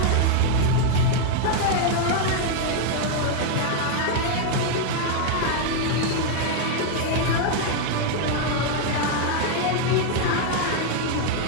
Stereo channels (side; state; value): both; different; correlation 0.00